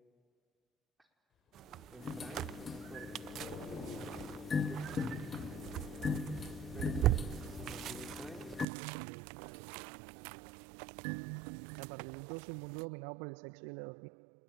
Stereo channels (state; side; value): drops out; left; at 8.7 s